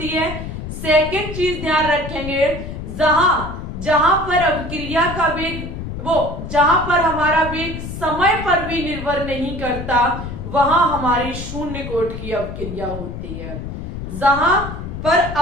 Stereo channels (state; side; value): noise; left; rumble, 8 dB below the sound